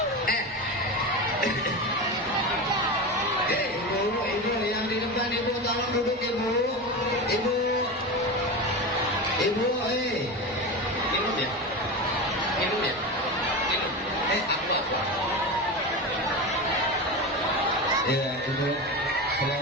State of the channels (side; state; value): both; normal; correlation 0.23